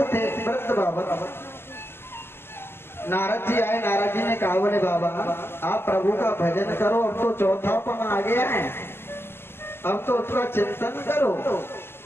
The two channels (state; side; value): late; right; 0.11 ms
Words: थे, वृद्ध बाबा। नारद जी आए, नारद जी ने कहा बोले बाबा आप प्रभु का भजन करो, अब तो चौथापन आ गया है, अब तो उसका चिंतन करो।